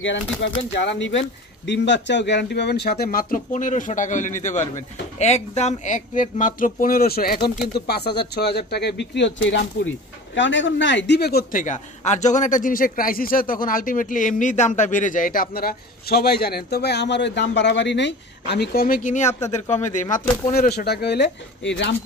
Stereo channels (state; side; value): normal; both; correlation 0.36